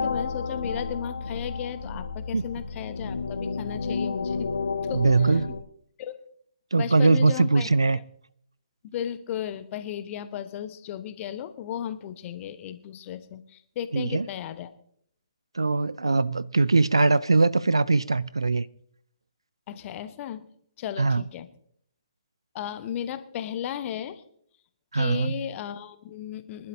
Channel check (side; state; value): both; inverted; correlation -0.86